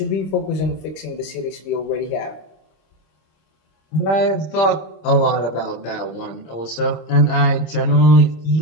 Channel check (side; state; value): right; late; 26 ms